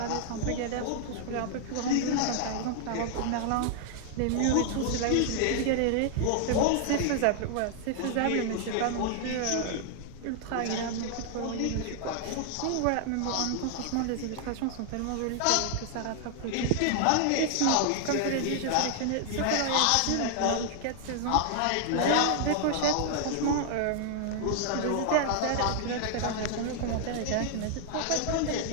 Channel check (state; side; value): different; both; correlation 0.00